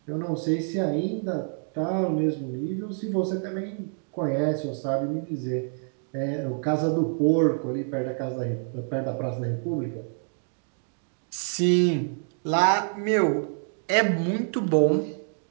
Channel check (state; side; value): silent; left; 60 dB below the other